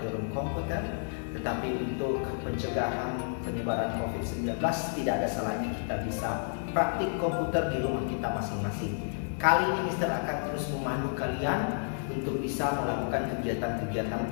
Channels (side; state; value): right; silent; digital silence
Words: komputer, tetapi untuk pencegahan penyebaran COVID-19 tidak ada salahnya kita bisa praktik komputer di rumah kita masing-masing. Kali ini Mister akan terus memandu kalian untuk bisa melakukan kegiatan-kegiatan